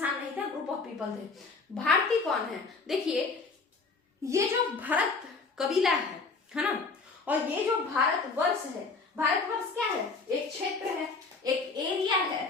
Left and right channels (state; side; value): quieter; right; 4.2 dB